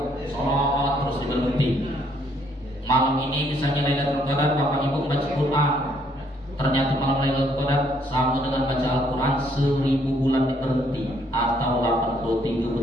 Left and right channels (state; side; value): normal; both; correlation 0.68